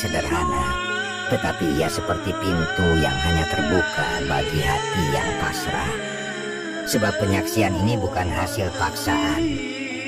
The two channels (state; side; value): identical; both; correlation 1.00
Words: tetapi ia seperti pintu yang hanya terbuka bagi hati yang pasrah. Sebab penyaksian ini bukan hasil paksaan,